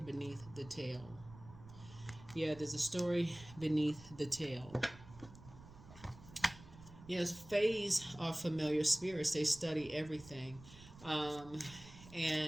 the tale. Yeah, there's a story beneath the tale. Yes, phase are familiar spirits. They study everything.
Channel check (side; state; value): right; noise; rumble, 18 dB below the sound